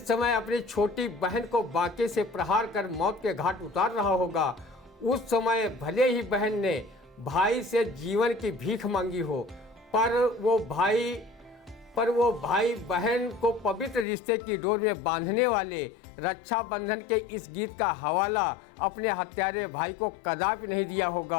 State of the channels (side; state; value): right; drops out; at 14.1 s